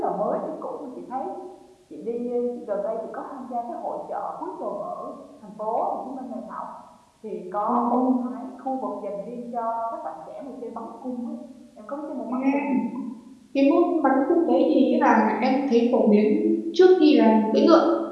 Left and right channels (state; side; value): identical; both; correlation 1.00